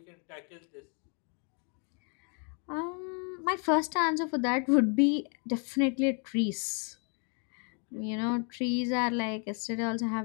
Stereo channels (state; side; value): quieter; right; 39.0 dB